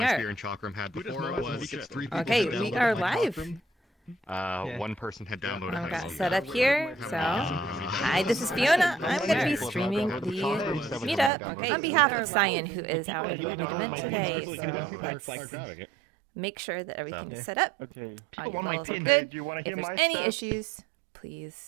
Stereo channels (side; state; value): left; drops out; at 11.3 s